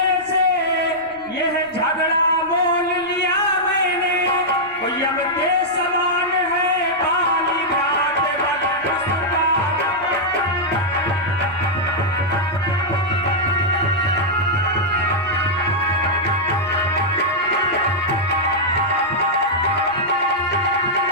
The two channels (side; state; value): right; noise; rumble, 26 dB below the sound